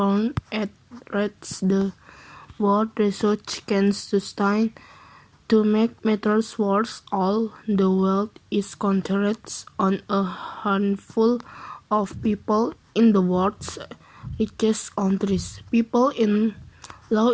at rates the world research can sustain. To make matters worse, all the wealth is concentrated on a handful of people in the world's richest countries. People in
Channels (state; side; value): identical; both; correlation 1.00